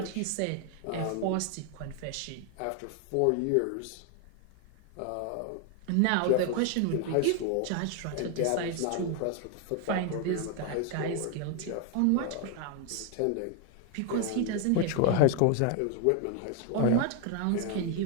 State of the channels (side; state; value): both; different; correlation 0.01